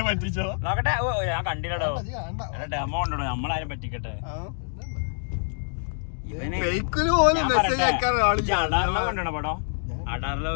പറ്റിച്ചോ. നോക്കട്ടെ. ഓ ഞാൻ കണ്ടില്ലടോ, ഡെമോ ഉണ്ടോ, നമ്മളാരും പറ്റിക്കട്ടെ. കണ്ടോ പടോ?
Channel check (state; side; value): silent; right; digital silence